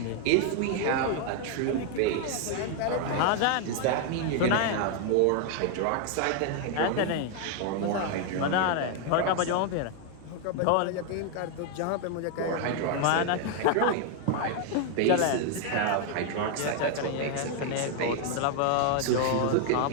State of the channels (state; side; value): different; both; correlation 0.01